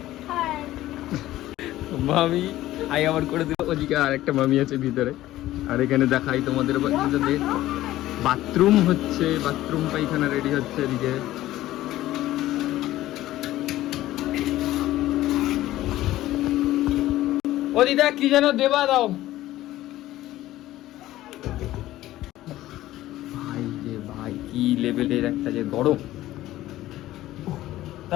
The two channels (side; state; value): right; quieter; 15.1 dB